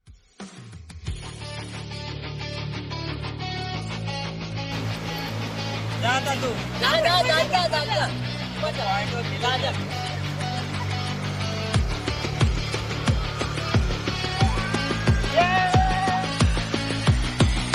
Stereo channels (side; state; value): both; identical; correlation 1.00